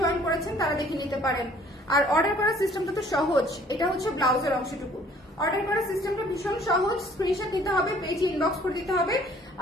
করেছেন তারা দেখে নিতে পারেন। আর অর্ডার করার সিস্টেমটা তো সহজ, এটা হচ্ছে ব্লাউজের অংশটুকু। অর্ডার করার সিস্টেমটা ভীষণ সহজ, স্ক্রিনশট নিতে হবে, পেজে ইনবক্স করে দিতে হবে,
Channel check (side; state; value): both; normal; correlation 0.56